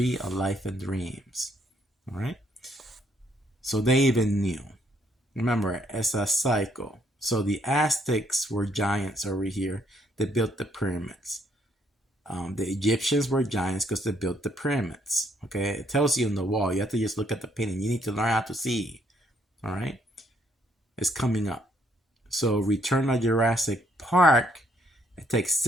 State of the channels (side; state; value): both; normal; correlation 0.69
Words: of life and dreams. All right. So they even knew. Remember, it's a cycle. So the Aztecs were giants over here. They built the pyramids. The Egyptians were giants because they built the pyramids. Okay, it tells you on the wall. You have to just look at the painting. You need to learn how to see. All right, it's coming up. So Return of Jurassic Park. It takes